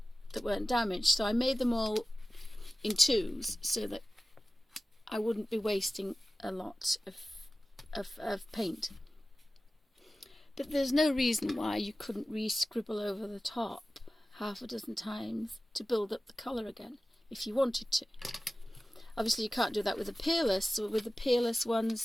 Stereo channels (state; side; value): normal; both; correlation 0.96